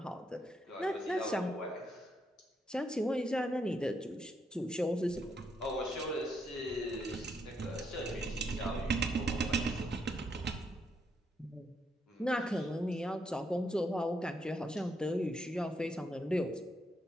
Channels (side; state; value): both; normal; correlation 0.77